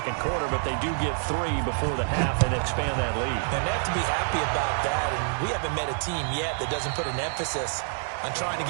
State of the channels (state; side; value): silent; left; digital silence